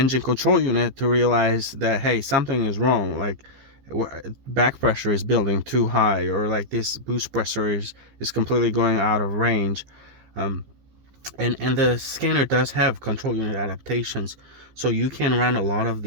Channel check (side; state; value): left; late; 15 ms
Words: control unit to realize that, hey, something is wrong. Like, back pressure is building too high, or like this boost pressure is completely going out of range. And the scanner does have control unit adaptations, so you can run a lot of